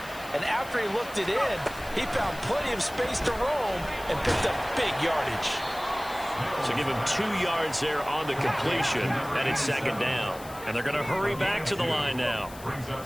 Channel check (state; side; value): noise; left; hiss, 18 dB below the sound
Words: and after he looked it in, he found plenty of space to roam and picked up big yardage. So give him 2 yards there on the completion, and it's second down. And they're going to hurry back to the line now. Brings up